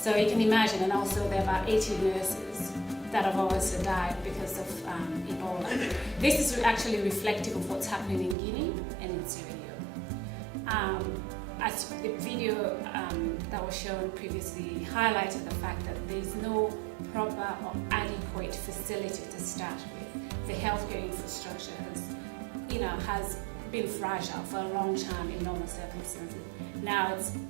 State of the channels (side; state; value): left; drops out; at 8.3 s